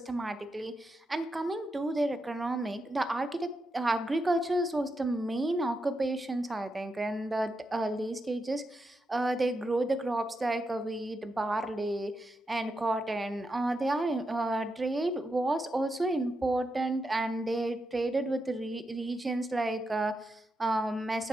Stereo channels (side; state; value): both; normal; correlation 0.86